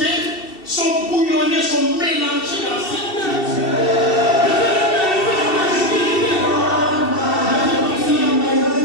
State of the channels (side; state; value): right; late; 2.7 ms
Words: sont bouillonnés, sont mélangés dans cette